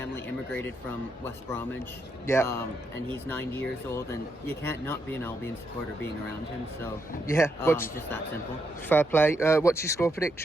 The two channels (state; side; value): normal; both; correlation 0.80